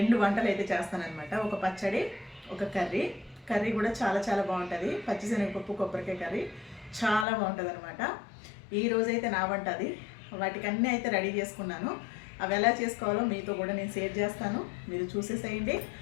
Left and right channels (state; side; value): drops out; right; at 7.2 s